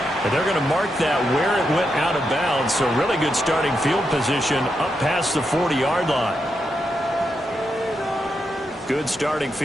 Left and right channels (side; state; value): both; normal; correlation 0.84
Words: And they're going to mark that where it went out of bounds. So really good starting field position up past the 40-yard line. Good starting